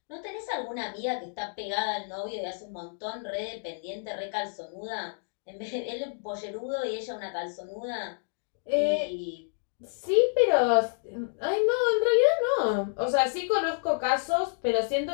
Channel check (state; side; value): silent; right; digital silence